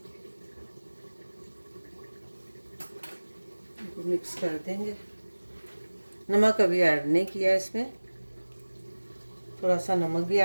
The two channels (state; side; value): inverted; both; correlation -1.00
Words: मिक्स कर देंगे। नमक अभी ऐड नहीं किया इसमें, थोड़ा सा नमक भी